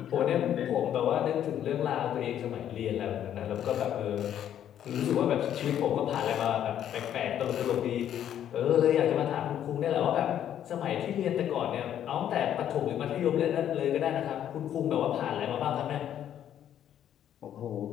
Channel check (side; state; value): right; quieter; 10.4 dB